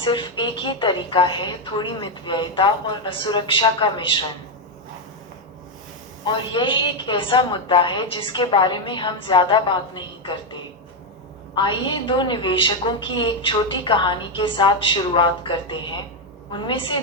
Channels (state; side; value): normal; both; correlation 0.04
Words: एक ही तरीका है, थोड़ी मितव्ययिता और असुरक्षा का मिश्रण। और यह एक ऐसा मुद्दा है जिसके बारे में हम ज्यादा बात नहीं करते। आइए दो निवेशकों की एक छोटी कहानी के साथ शुरुआत करते हैं। उनमें से